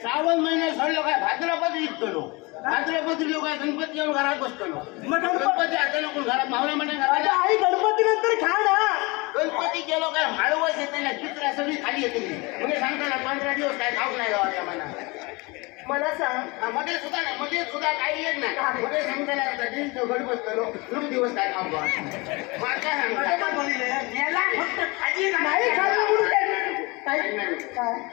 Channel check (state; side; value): quieter; right; 25.8 dB